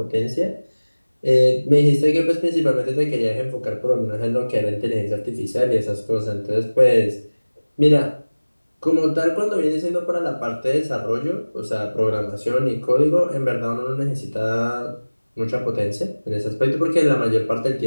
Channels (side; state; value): both; inverted; correlation -1.00